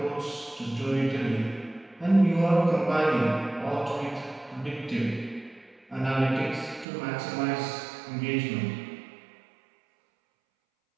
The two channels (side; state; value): left; drops out; at 6.9 s